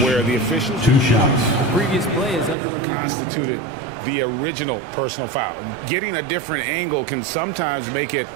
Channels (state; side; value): drops out; left; at 2.6 s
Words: the officials Previous play is under review. constituted the original personal foul. Getting a different angle can sometimes make it